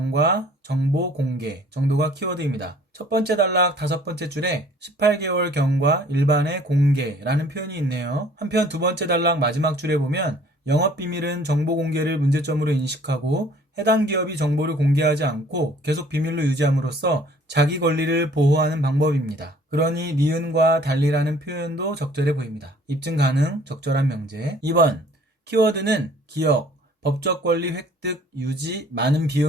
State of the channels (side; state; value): both; normal; correlation 0.55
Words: 정보 공개 정도가 키워드입니다. 첫 번째 단락 다섯 번째 줄에 18개월 경과 일반의 공개라는 표현이 있네요. 한편 두 번째 단락 마지막 줄에 보면 영업비밀은 정보 공개를 문제점으로 인식하고 해당 기업이 정보를 공개하지 않고 계속 비밀로 유지함으로써 자기 권리를 보호하는 방법입니다. 그러니 니은과 달리라는 표현도 적절해 보입니다. 입증 가능, 적절한 명제. 2번, 키워드는 기억, 법적 권리 획득, 유지, 많은